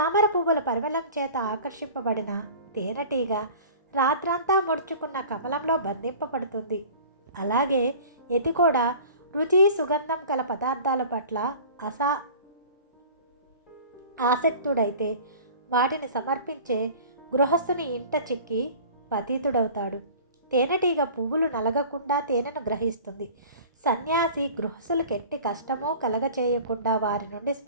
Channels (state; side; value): inverted; both; correlation -0.42